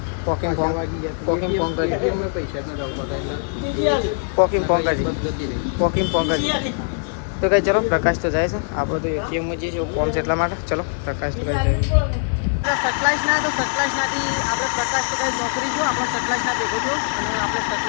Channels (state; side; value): silent; right; digital silence